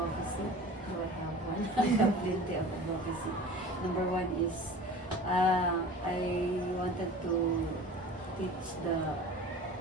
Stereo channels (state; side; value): normal; both; correlation 0.40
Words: do I have one? I have plenty of advocacy. Number one is I wanted to teach the